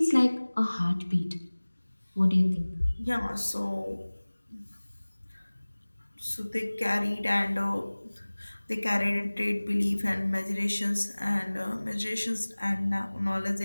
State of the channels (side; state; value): both; inverted; correlation -1.00